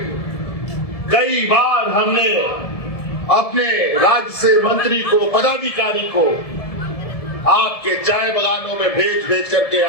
कई बार हमने अपने राज्य से मंत्री को, पदाधिकारी को आपके चाय बागानों में भेज करके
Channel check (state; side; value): late; right; 1.7 ms